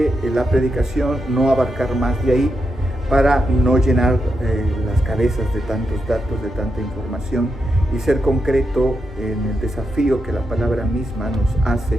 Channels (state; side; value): normal; both; correlation 0.85